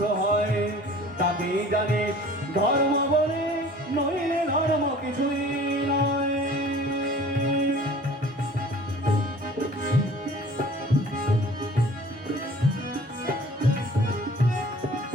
হয়, তাকেই জানিস ধর্ম বলে, নইলে ধর্ম কিছুই নয়।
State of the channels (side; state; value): both; normal; correlation 0.47